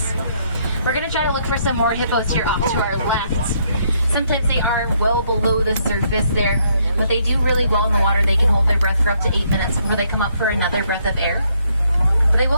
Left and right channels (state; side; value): inverted; both; correlation -0.71